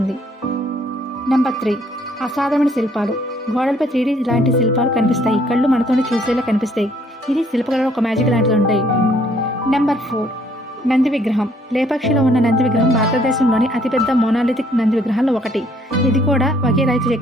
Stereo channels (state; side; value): normal; both; correlation 0.64